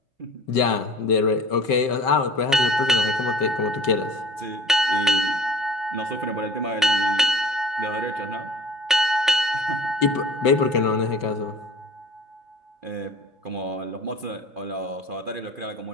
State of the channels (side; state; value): both; normal; correlation 0.45